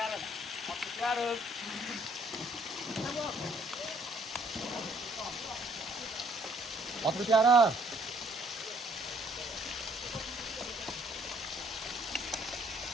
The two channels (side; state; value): both; normal; correlation 0.63